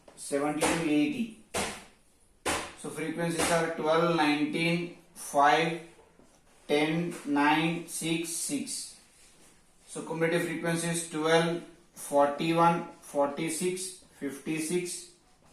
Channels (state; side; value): identical; both; correlation 1.00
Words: 70 to 80. So frequencies are 12, 19, 5, 10, 9, 6, 6. So cumulative frequency is 12, 41, 46, 56,